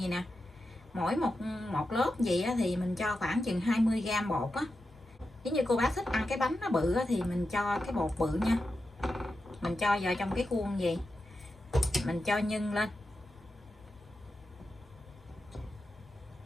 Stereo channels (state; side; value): normal; both; correlation 0.90